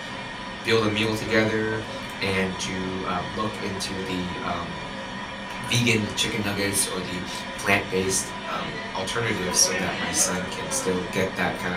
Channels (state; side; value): identical; both; correlation 1.00